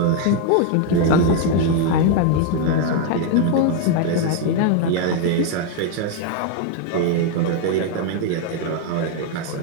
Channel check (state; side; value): different; both; correlation 0.01